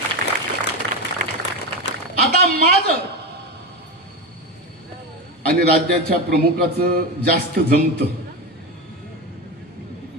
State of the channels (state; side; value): normal; both; correlation 0.19